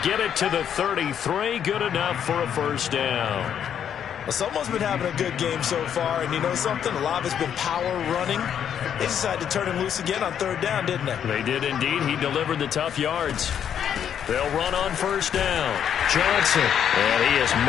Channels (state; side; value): quieter; right; 8.9 dB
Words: get it to the 33. Good enough for a 1st down. Well, someone's been having a good game so far, and you know something? A lot of it's been power running. They decided to turn him loose again on 3rd down, didn't they? They did indeed. He delivered the tough yards. They'll run on 1st down. Johnson. And he is